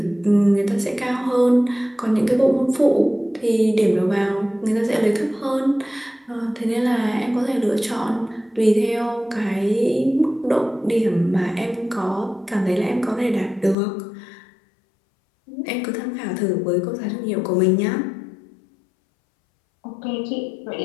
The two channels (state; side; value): drops out; right; at 13.8 s